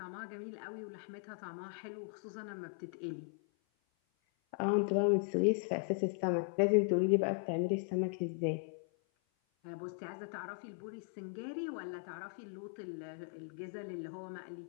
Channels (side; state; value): right; silent; 52 dB below the other